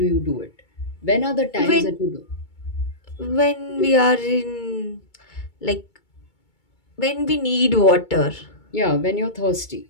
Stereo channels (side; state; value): right; late; 2.2 ms